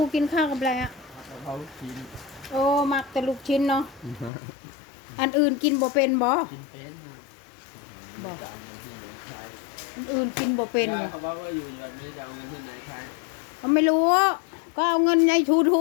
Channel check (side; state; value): right; drops out; at 4.3 s